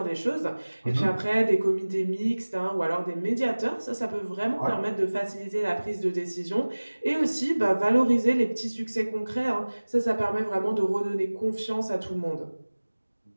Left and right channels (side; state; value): both; inverted; correlation -1.00